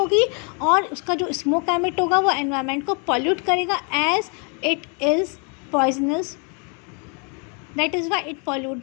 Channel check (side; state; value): right; quieter; 36.9 dB